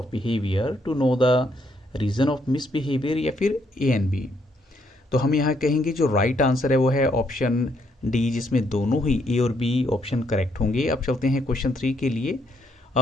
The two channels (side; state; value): both; normal; correlation 0.73